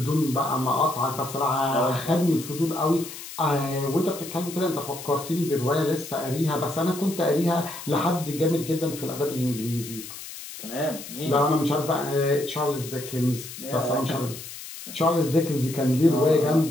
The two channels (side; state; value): left; noise; hiss, 12 dB below the sound